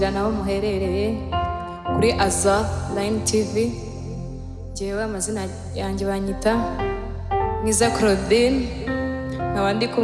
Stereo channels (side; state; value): both; identical; correlation 1.00